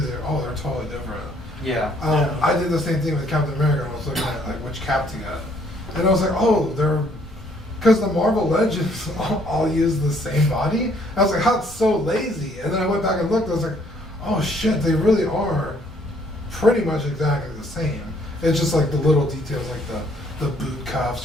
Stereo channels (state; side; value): normal; both; correlation 0.64